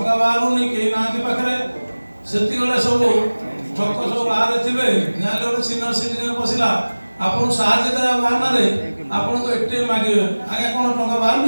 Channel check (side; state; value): both; inverted; correlation -1.00